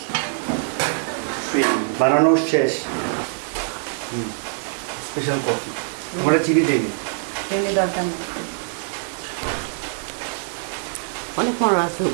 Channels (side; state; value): left; silent; digital silence